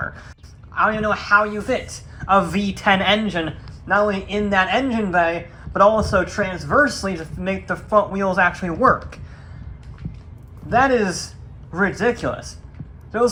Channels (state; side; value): identical; both; correlation 1.00